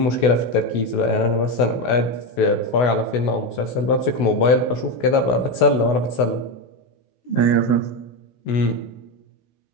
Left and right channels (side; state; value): right; late; 16 ms